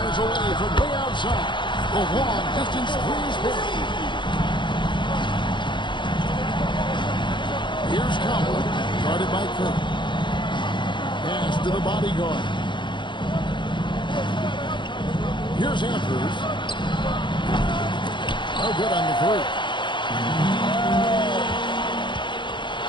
away from way outside. The long distance three is good. Here's Coward, guarded by Curry. Pass to the bodyguard. Here's Andrews. No good on the three.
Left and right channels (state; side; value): late; right; 0.23 ms